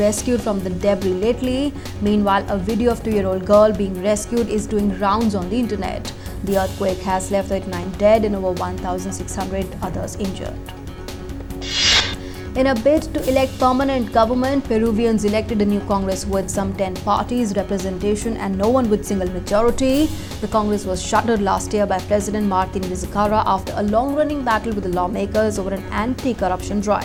from the debris lately. Meanwhile, a video of a 2-year-old girl being rescued is doing rounds on the internet. The earthquake has left 39 dead and over 1,600 others injured. In a bid to elect permanent government, Peruvians elected a new Congress with some 10 parties representation and no one with single majority. The Congress was shuttered last year by President Martin Vizcarra after a long-running battle with the lawmakers over an anti-corruption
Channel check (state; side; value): identical; both; correlation 1.00